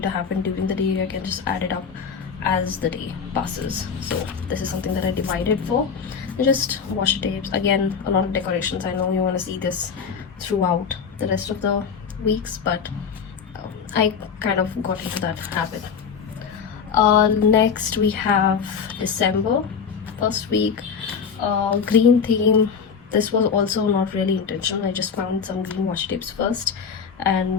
happen during the day, I can just add it up as the day passes. So this is something that I divided for. Just washi tapes, again a lot of decorations. I know you want to see this throughout the rest of the weeks, but I kind of got into that habit. Next we have December, first week, green theme. This was also not really intentional. I just found some green washi tapes first,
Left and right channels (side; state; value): right; quieter; 6.4 dB